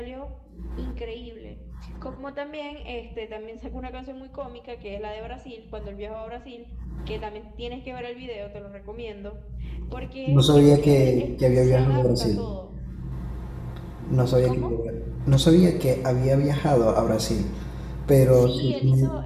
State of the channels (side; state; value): both; identical; correlation 1.00